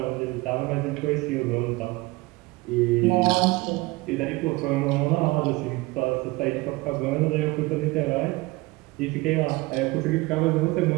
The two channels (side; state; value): left; quieter; 22.1 dB